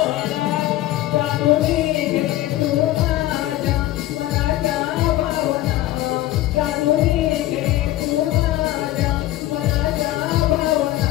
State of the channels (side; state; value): right; quieter; 15.4 dB